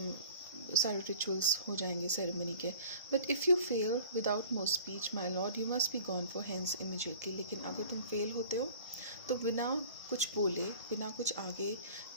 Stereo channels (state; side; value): inverted; both; correlation -0.45